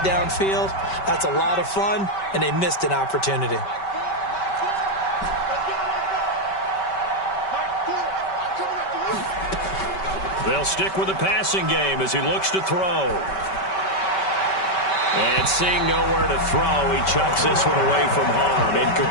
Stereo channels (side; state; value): right; late; 5.2 ms